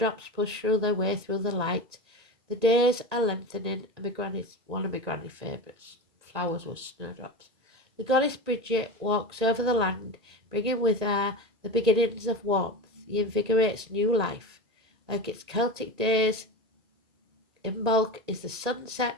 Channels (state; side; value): late; left; 1.9 ms